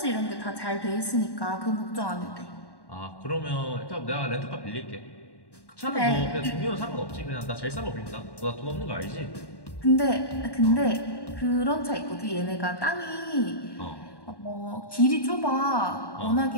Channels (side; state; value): right; late; 1.1 ms